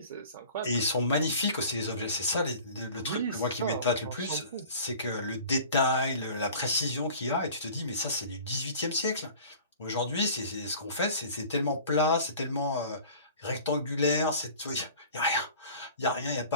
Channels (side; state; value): both; inverted; correlation -0.44